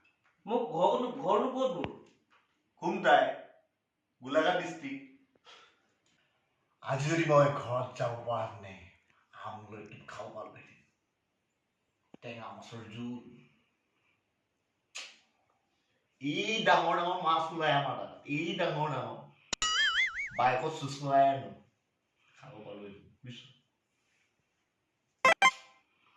মোক ঘৰনো ক'ত মোৰ কোনটাই গোলাঘাট ডিষ্ট্ৰিক্ট আজি যদি মই ঘৰত যাব পৰা নাই আমলৈ খাব পাৰোঁ টেঙা মাছৰ জোল এই ডাঙৰ ডাঙৰ মাছ ওলাই আমাৰ তাত এই ডাঙৰ ডাঙৰ বাইকত চুচুৱাই আনো খাব পাৰোঁ বুজিছোঁ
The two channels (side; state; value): both; identical; correlation 1.00